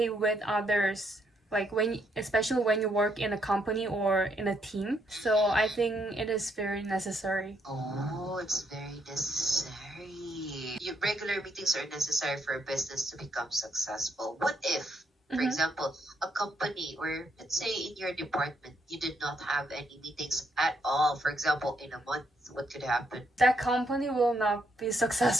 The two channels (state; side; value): normal; both; correlation 0.74